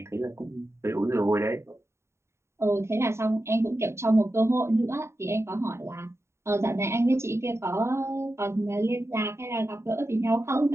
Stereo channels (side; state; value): left; late; 0.13 ms